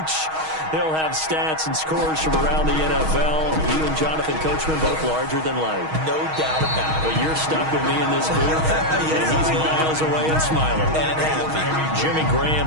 He'll have stats and scores from around the NFL. You and Jonathan Coachman both larger than life. No doubt about it. But you're stuck with me in this booth, Yes, and he's miles away and smiling. And happy. Jimmy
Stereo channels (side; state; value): left; late; 6.3 ms